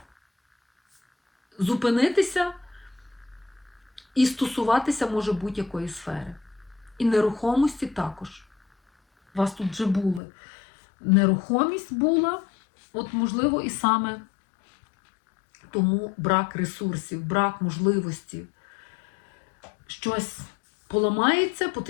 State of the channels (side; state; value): right; drops out; at 10.2 s